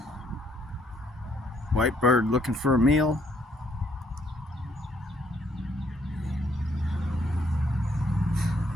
White bird looking for a meal.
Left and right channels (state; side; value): normal; both; correlation 0.69